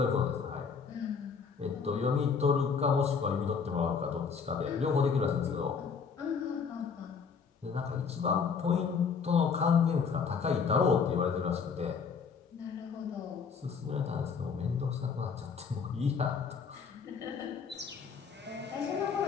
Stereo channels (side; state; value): right; quieter; 5.9 dB